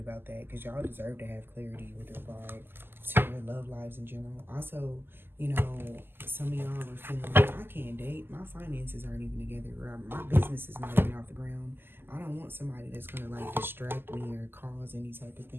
that because y'all deserve to have clarity with regard to your love lives in general. Also, you know, some of y'all are feeling like, I can't date. My finances aren't even together. Or my business is not even off the ground. I don't want somebody that's going to like distract me or cause any type of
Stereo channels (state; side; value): late; left; 0.10 ms